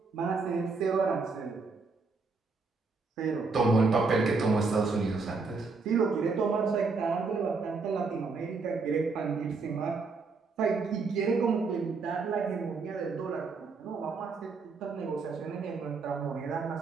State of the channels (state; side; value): quieter; left; 4.3 dB